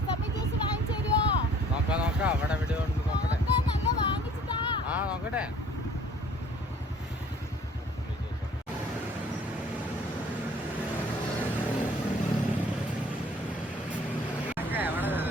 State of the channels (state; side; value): normal; both; correlation 0.54